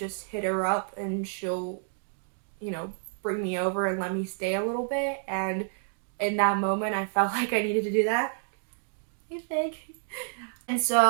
hit her up and she'll, you know, bring me over and let me stay a little bit. And in that moment, I felt like I needed to do that. Hey, Fig. And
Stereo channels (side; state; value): left; silent; digital silence